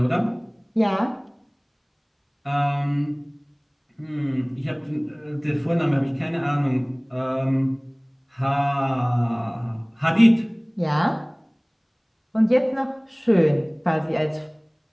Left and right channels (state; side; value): identical; both; correlation 1.00